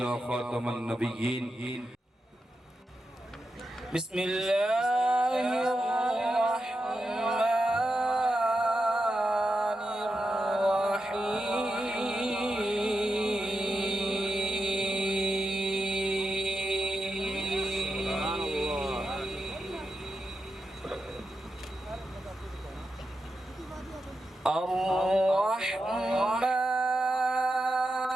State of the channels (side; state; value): both; normal; correlation 0.87